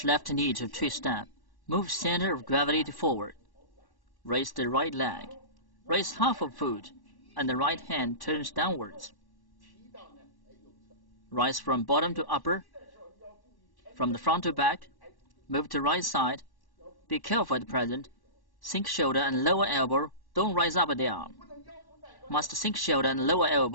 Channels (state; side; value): late; right; 1.1 ms